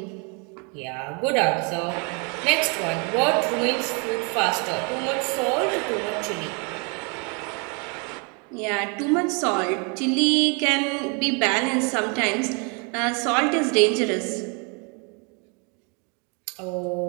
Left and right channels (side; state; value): left; quieter; 34.3 dB